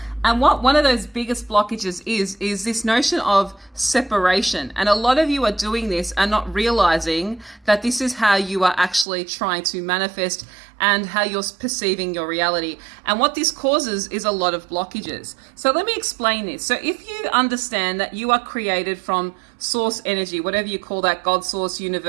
And what one of those biggest blockages is this notion of separation. And a lot of you are doing this and not realizing that this is how you are actually trying to manifest and how you're perceiving your reality. And what this causes is a lot of blockages. So let me explain this. So if you understand that you are created from source energy, whatever you call that, God, source,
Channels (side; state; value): left; drops out; at 9.1 s